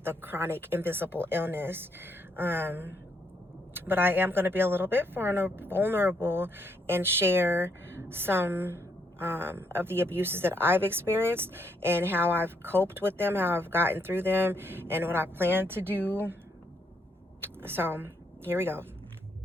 a chronic invisible illness. But I am going to be a little bit vulnerable and share some of the abuses that I've experienced and how I've coped with them, how I've gotten through them, and what I plan to do. So here we go.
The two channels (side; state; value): both; normal; correlation 0.74